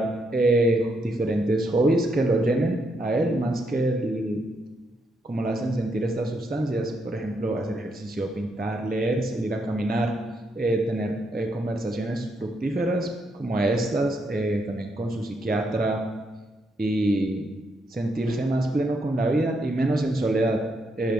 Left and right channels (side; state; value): both; normal; correlation 0.78